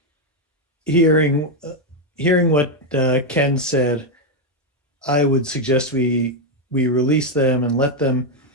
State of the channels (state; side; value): normal; both; correlation 0.04